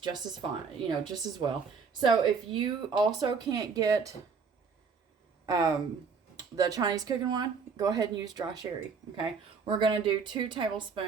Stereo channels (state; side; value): quieter; left; 5.4 dB